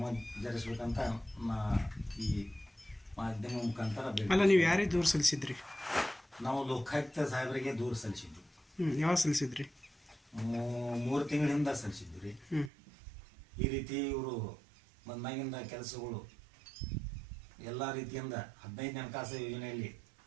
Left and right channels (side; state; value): left; drops out; at 12.7 s